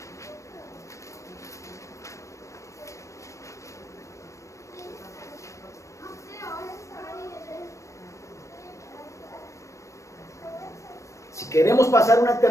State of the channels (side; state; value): right; late; 0.15 ms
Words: Si queremos pasar una